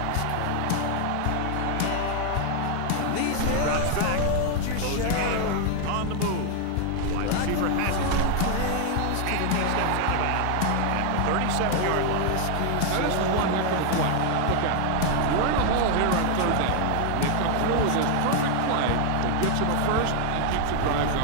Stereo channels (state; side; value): different; both; correlation 0.00